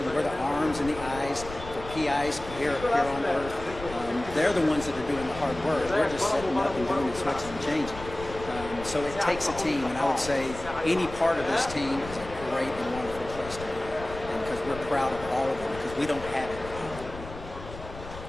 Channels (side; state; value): left; noise; rumble, 13 dB below the sound